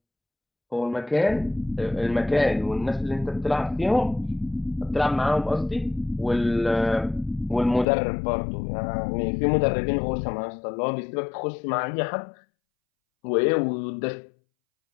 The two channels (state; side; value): drops out; right; at 7.9 s